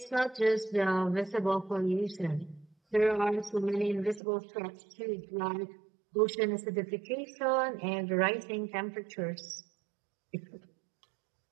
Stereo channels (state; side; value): drops out; left; at 4.2 s